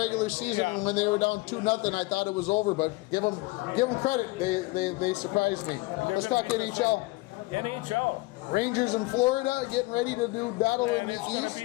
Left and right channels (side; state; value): right; quieter; 22.8 dB